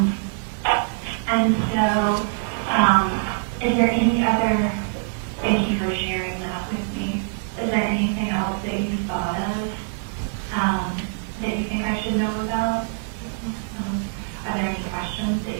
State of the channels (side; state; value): left; silent; digital silence